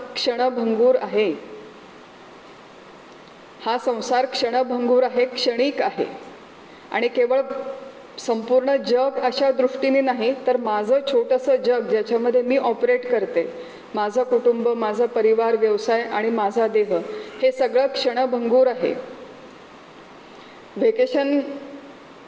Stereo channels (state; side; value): identical; both; correlation 1.00